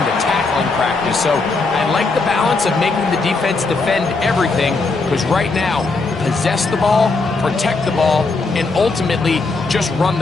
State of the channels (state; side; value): quieter; right; 3.8 dB